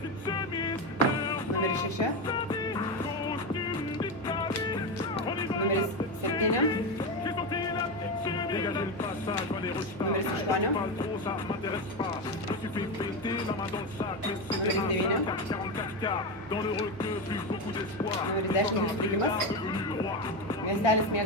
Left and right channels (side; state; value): both; normal; correlation 0.15